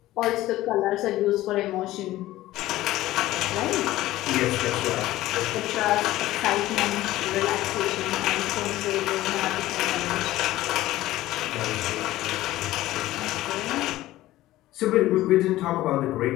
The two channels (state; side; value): quieter; right; 15.9 dB